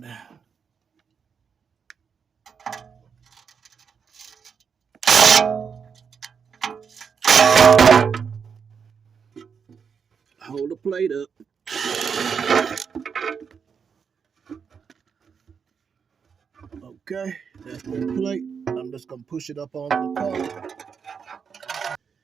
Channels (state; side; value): quieter; left; 6.4 dB